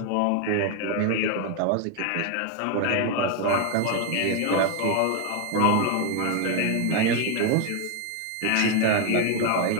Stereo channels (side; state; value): both; different; correlation 0.01